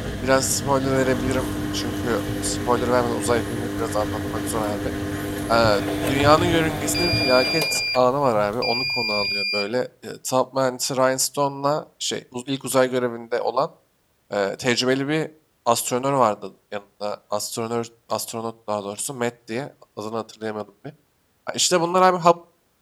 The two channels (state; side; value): identical; both; correlation 1.00